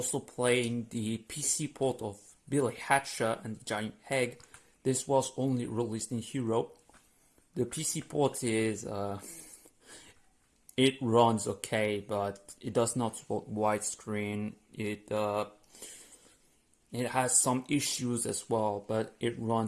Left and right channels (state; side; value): identical; both; correlation 1.00